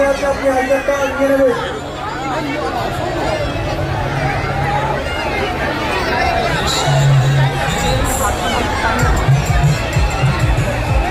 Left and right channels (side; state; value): both; identical; correlation 1.00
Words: আছে, আপনি আই কার্ডটা নিয়ে নেবেন।